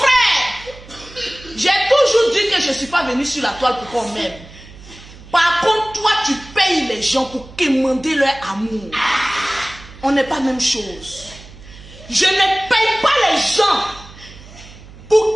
j'ai toujours dit que je ne suis pas venu sur la toile pour qu'on m'aime. Par contre, toi, tu payes les gens pour quémander leur amour. On n'est pas la même chose. Je ne paye pas les gens pour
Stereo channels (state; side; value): noise; right; hum, 19 dB below the sound